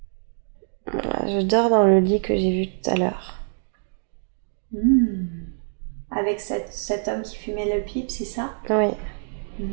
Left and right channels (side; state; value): left; silent; digital silence